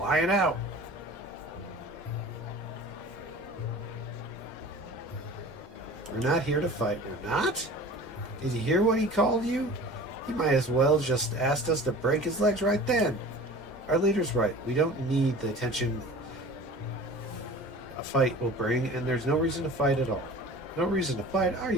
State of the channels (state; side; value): normal; both; correlation 0.41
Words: out. We're not here to fight. We're not? Did you hear what he called you? He might as well just asked us to break his legs right then. Our leader's right. We don't need the attention a fight will bring, and there's no reason to fight at all. No reason to fight? Are